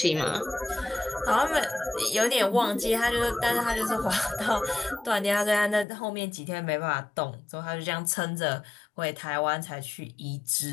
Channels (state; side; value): drops out; right; at 5.9 s